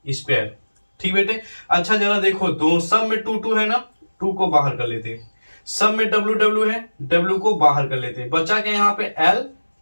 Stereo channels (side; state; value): both; inverted; correlation -1.00